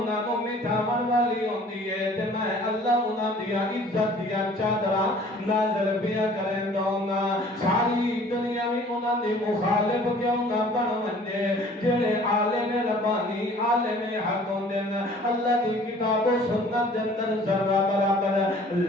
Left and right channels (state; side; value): normal; both; correlation 0.51